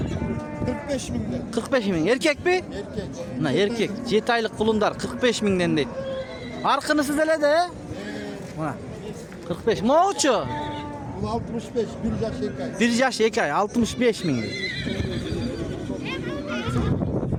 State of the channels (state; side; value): identical; both; correlation 1.00